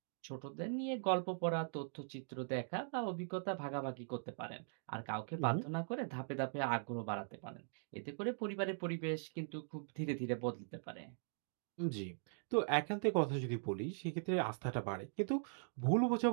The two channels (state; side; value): silent; left; digital silence